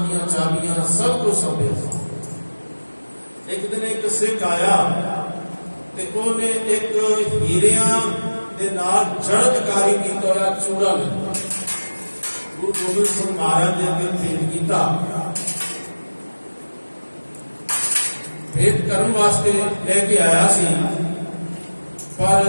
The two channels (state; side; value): inverted; both; correlation -1.00